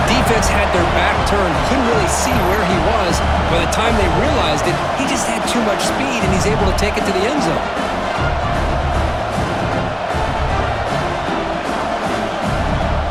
defense had their back turned, couldn't really see where he was. By the time they realized it, he just had too much speed, and he's able to take it to the end zone.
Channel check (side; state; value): both; identical; correlation 1.00